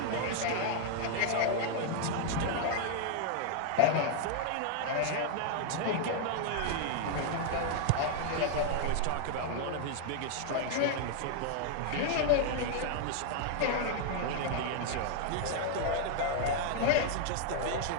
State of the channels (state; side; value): different; both; correlation 0.00